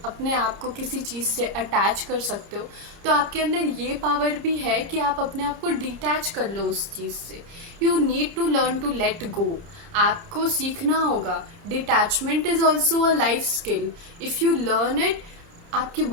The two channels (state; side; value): late; left; 29 ms